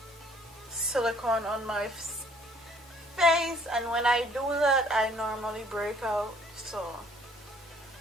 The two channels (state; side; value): normal; both; correlation 0.59